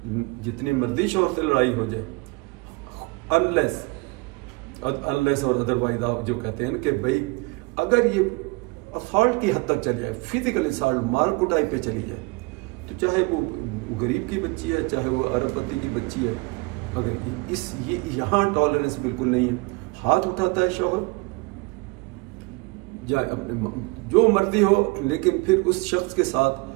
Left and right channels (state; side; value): quieter; left; 27.1 dB